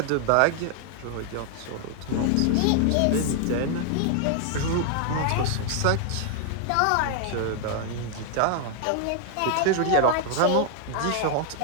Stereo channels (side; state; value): both; different; correlation 0.00